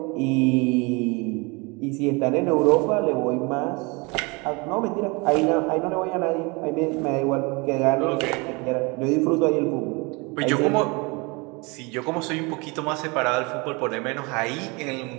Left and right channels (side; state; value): left; quieter; 27.9 dB